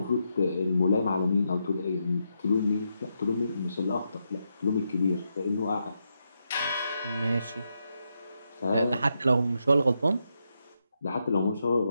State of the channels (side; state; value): both; inverted; correlation -0.83